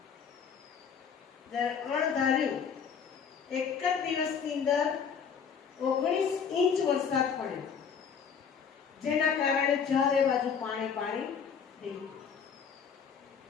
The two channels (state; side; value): quieter; right; 6.8 dB